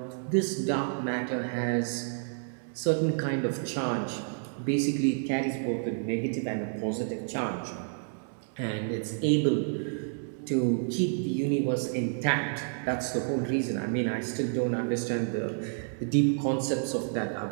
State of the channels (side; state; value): left; silent; digital silence